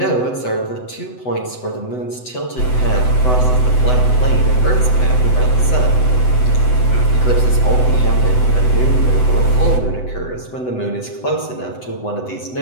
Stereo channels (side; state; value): right; late; 7.9 ms